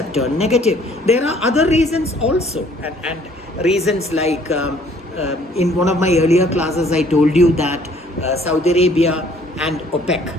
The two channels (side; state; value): both; normal; correlation 0.59